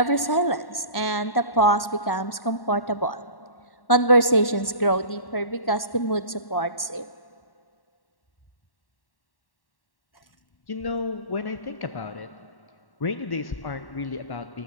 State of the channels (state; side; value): late; right; 1.1 ms